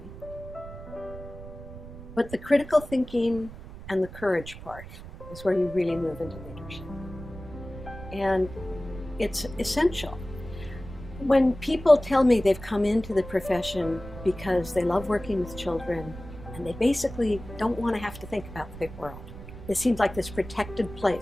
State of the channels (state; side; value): noise; right; rumble, 13 dB below the sound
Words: But the critical thinking and the courage part is where you really move into leadership. And it's essential. When people tell me they've come into the profession because they love working with children and they basically don't want to have to think about the big world. It seems like this protected